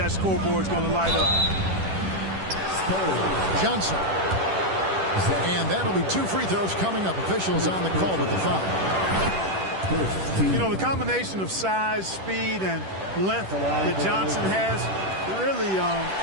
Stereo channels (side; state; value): left; late; 10 ms